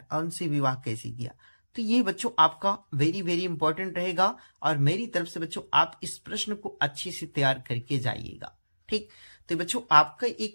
और उनसे विवाह कैसे किया। तो ये बच्चों आपका वेरी वेरी इंपॉर्टेंट रहेगा, और मेरी तरफ से बच्चों आप इस प्रश्न को अच्छे से तैयार करके जाइएगा, ठीक। तो बच्चों आपका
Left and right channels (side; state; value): both; inverted; correlation -1.00